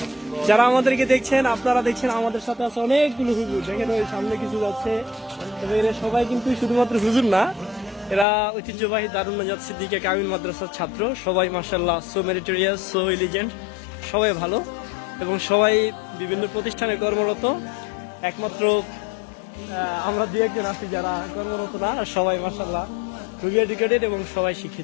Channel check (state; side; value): drops out; right; at 8.2 s